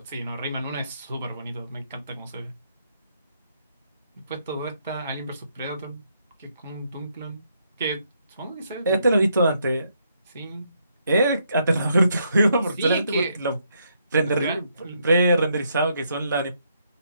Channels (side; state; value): both; inverted; correlation -0.75